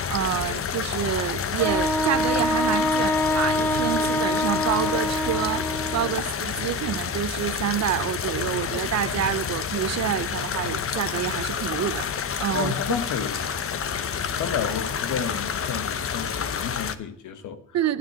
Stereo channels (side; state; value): both; normal; correlation 0.23